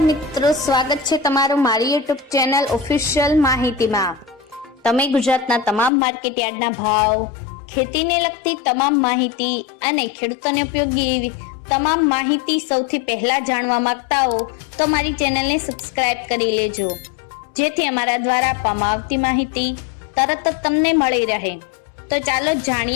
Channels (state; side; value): drops out; right; at 5.9 s